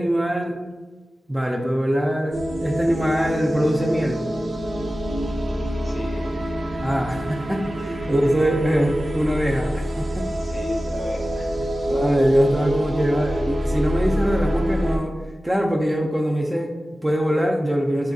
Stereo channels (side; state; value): both; normal; correlation 0.95